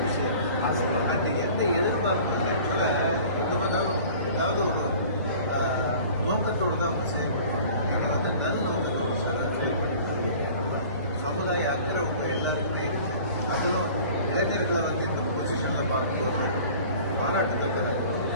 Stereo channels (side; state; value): both; inverted; correlation -0.46